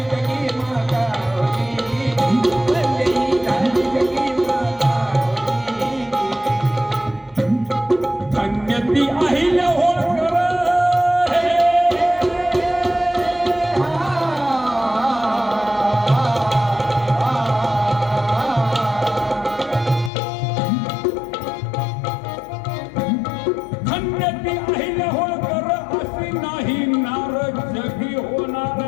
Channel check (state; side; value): drops out; right; at 20.1 s